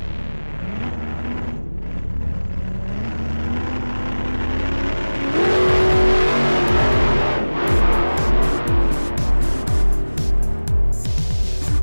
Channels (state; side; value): inverted; both; correlation -1.00